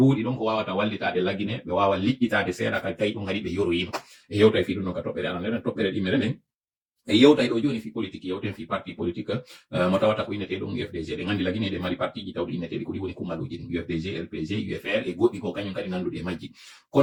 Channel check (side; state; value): both; identical; correlation 1.00